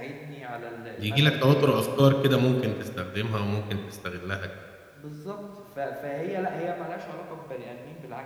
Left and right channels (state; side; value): identical; both; correlation 1.00